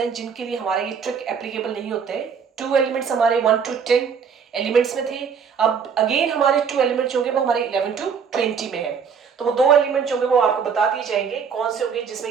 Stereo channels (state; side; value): quieter; left; 6.5 dB